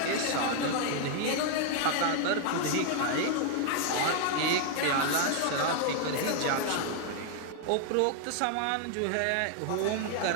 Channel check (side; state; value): both; different; correlation 0.00